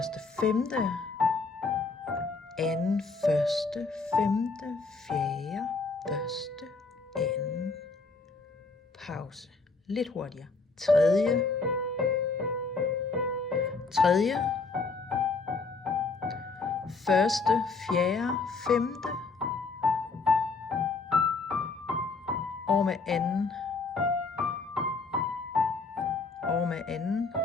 femte. Anden, første, femte, fjerde, første, anden. Pause. Lidt hurtigere. Tredje. Tredje. Første, fjerde, femte. Over med anden. Over med anden.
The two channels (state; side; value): quieter; right; 4.1 dB